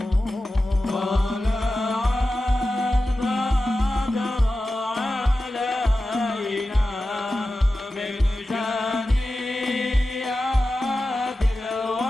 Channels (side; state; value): both; normal; correlation 0.93